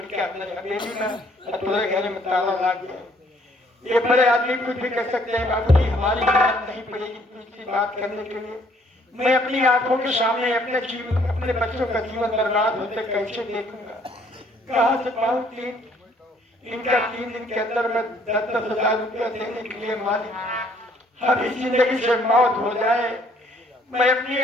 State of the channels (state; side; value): normal; both; correlation 0.63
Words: अंदर हवेली में तुम्हारे घर में ताला लग गया। ये बड़े आदमी कुछ भी कर सकते हैं बाबूजी, हमारी हिम्मत नहीं पड़ेगी दूसरी बात करने के लिए। मैं अपनी आंखों के सामने अपने जीवन अपने बच्चों का जीवन बर्बाद होते कैसे देखूंगा, कहाँ से पाऊँ 3 दिन के अंदर मैं 10,000 रुपया देने के लिए मालिक अभी जिंदगी से मौत हो जाए, मैं अपने